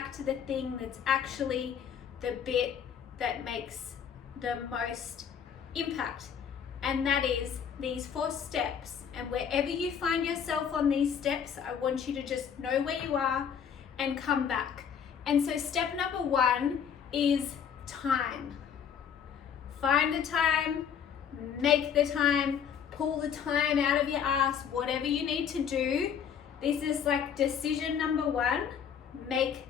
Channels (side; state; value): right; quieter; 7.8 dB